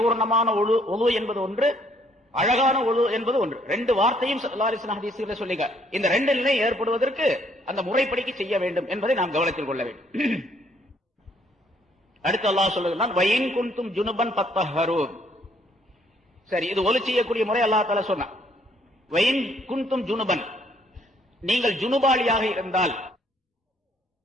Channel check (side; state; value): both; normal; correlation 0.66